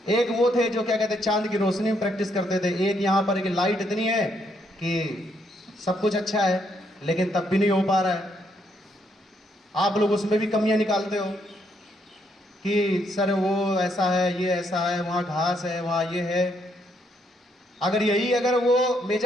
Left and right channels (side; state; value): both; normal; correlation 0.74